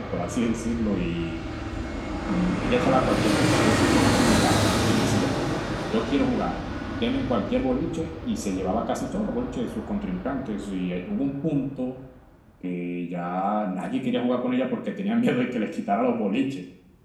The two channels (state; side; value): identical; both; correlation 1.00